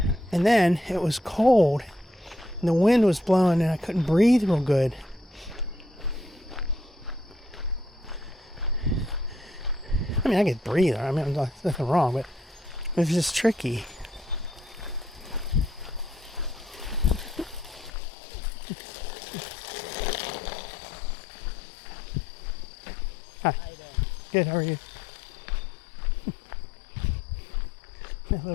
And then it was cold and the wind was blowing and I couldn't breathe real good. I mean, I could breathe. I mean, there's nothing wrong, but it was just tricky. Hi. Good, how are you? That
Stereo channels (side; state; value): right; drops out; at 17.9 s